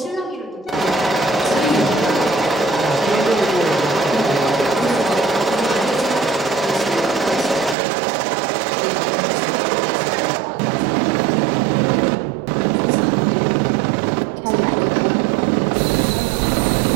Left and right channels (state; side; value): drops out; left; at 7.8 s